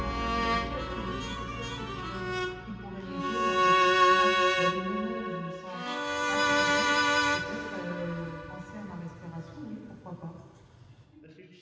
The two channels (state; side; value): identical; both; correlation 1.00